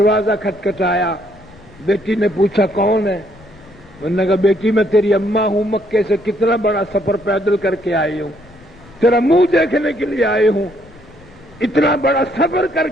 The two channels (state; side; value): noise; left; rumble, 25 dB below the sound